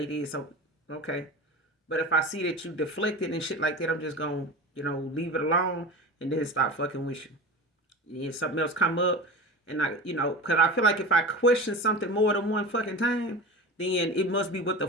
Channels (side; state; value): both; normal; correlation 0.31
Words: this. So, okay. But if I see that you deflected and shit like that, I'm just going to, leave it alone and then stop fucking with you. If something else come up, and because I feel like if I question something more than one fucking time, then it must be what the